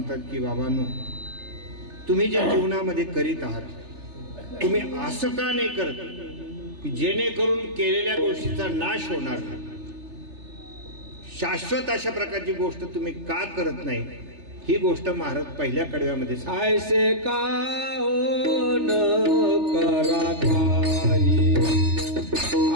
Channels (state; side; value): late; left; 3.3 ms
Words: की बाबांनो, तुम्ही जे जीवनामध्ये करीत आहात तुम्ही असं का नाही करत की जेणेकरून केलेल्या गोष्टीचा नाश होणार नाही. शाश्वत अशा प्रकारची गोष्ट तुम्ही का करत नाही ही गोष्ट महाराज पहिल्या कडव्यामध्ये ऐसे का हो न करा काही,